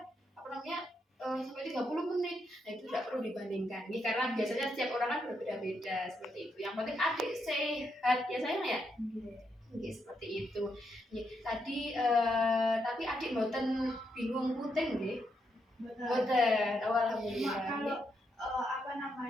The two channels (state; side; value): normal; both; correlation 0.80